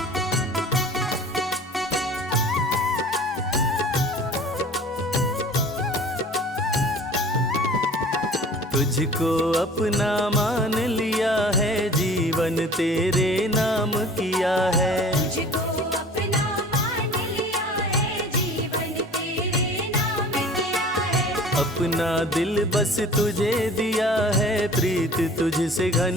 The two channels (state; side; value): normal; both; correlation 0.45